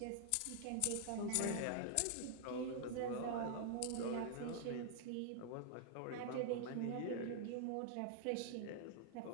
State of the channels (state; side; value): different; both; correlation 0.00